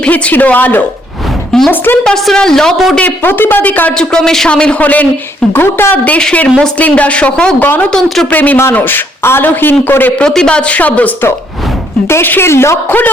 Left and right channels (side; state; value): both; normal; correlation 0.69